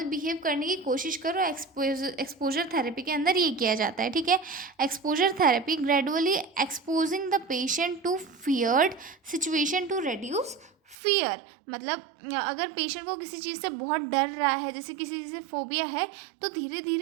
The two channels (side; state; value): left; drops out; at 11.0 s